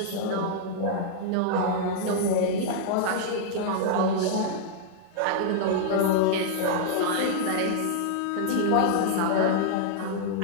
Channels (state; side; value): different; both; correlation -0.01